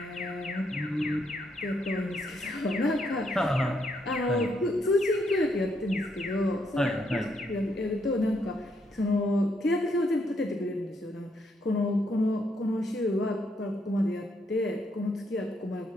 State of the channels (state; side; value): normal; both; correlation 0.75